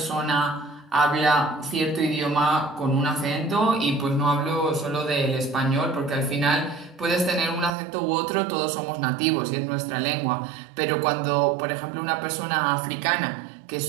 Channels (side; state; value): left; drops out; at 7.7 s